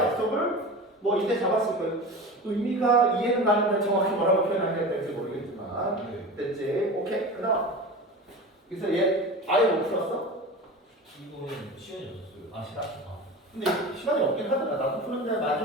뭐 이때 잡았을 거예요. 의미가 이해는 가는데 정확히 뭐라고 표현해야 될지 모르겠지만 네. 됐지? 오케이. 그다음 그래서 얘 아예 못 풀었어? 이거는 시간이 없었어요. 시간. 근데 시간이 없긴 하더라. 나도 푸는데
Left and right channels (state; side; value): normal; both; correlation 0.31